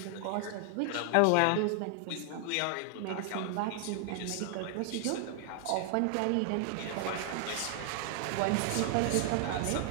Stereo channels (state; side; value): different; both; correlation 0.00